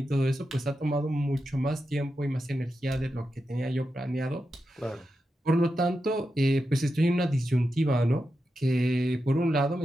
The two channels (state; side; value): normal; both; correlation 0.89